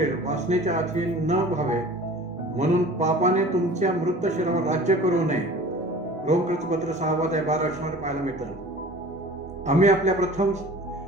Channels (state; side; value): normal; both; correlation 0.42